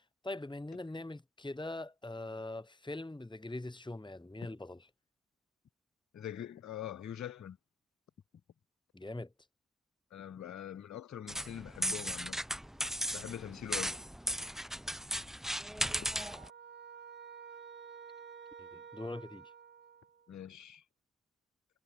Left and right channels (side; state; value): both; normal; correlation 0.61